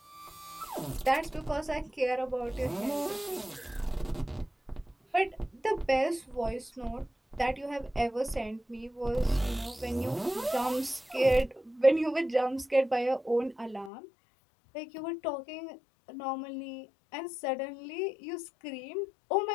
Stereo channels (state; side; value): drops out; right; at 13.9 s